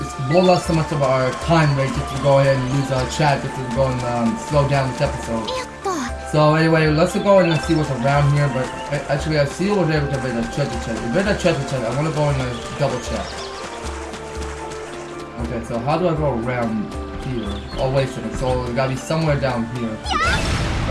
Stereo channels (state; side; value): identical; both; correlation 1.00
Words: us so much of our time rate just to go ahead and use chat just to go and slow down this episode. So anyway, let's go and see what's around here. But actually, I see over there with the treasure chest. If there's a treasure chest, I want to go and double check. Okay, so how do I go around here? Oh, wait a second. So it gotta be somewhere down here.